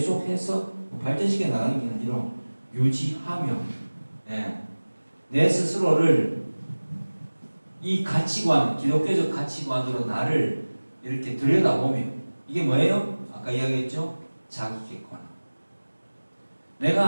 발전시켜 나가는 게 아니라 유지하며, 내 스스로를 이 가치관, 기독교적 가치관으로 나를 이렇게 들여다보며, 이게 뭐예요? 아까 이야기했죠? 자기 객관.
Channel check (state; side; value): inverted; both; correlation -1.00